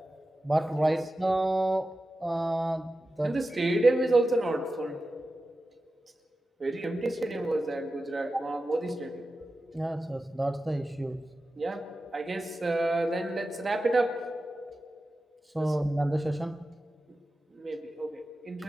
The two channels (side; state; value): both; normal; correlation 0.93